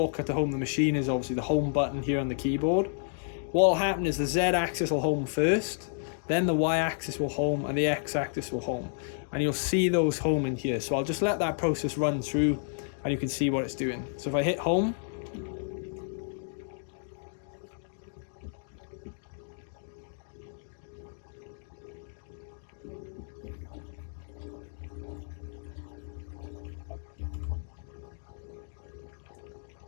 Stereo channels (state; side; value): silent; right; digital silence